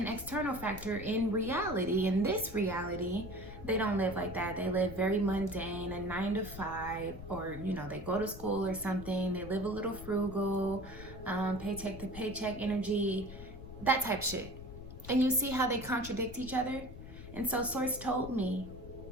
external factor, in reality, in this reality, they don't live like that. They live very mundane, a 9 to 5, or, you know, they go to school or something. They live a little frugal, paycheck to paycheck energy, that type shit. And you see how they contradict each other? And so Source told me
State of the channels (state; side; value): noise; left; rumble, 13 dB below the sound